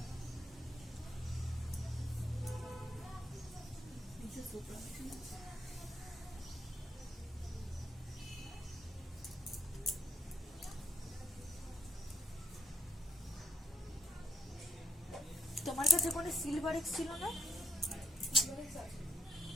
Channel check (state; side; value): normal; both; correlation 0.76